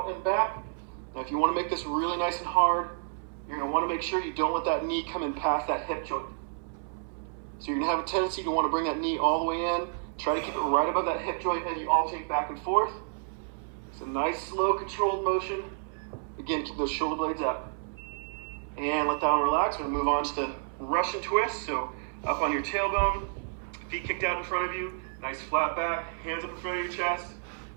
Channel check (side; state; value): left; silent; 58 dB below the other